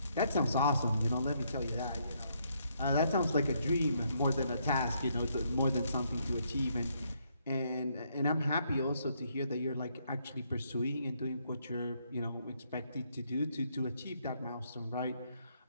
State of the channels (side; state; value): both; inverted; correlation -0.73